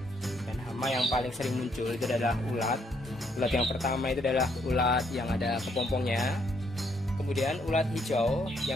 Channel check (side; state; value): both; normal; correlation 0.71